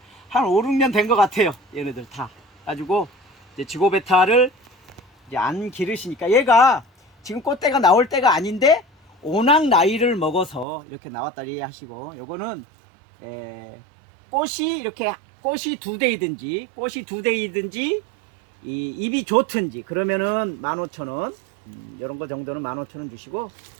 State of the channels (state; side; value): drops out; left; at 10.7 s